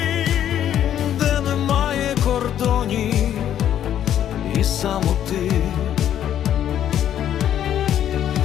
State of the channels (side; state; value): right; quieter; 10.6 dB